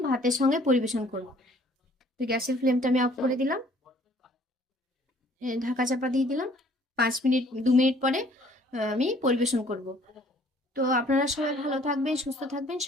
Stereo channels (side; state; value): both; normal; correlation 0.58